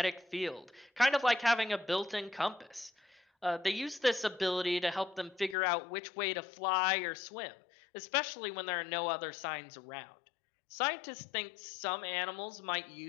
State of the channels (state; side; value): drops out; right; at 5.6 s